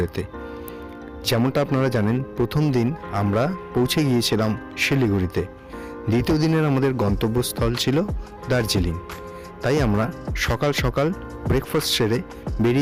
যেমনটা আপনারা জানেন, প্রথম দিন আমরা পৌঁছে গিয়েছিলাম শিলিগুড়িতে। দ্বিতীয় দিনের আমাদের গন্তব্যস্থল ছিল দার্জিলিং। তাই আমরা সকাল সকাল ব্রেকফাস্ট সেরে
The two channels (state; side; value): identical; both; correlation 1.00